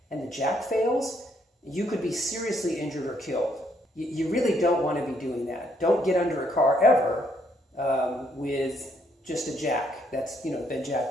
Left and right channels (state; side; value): normal; both; correlation 0.71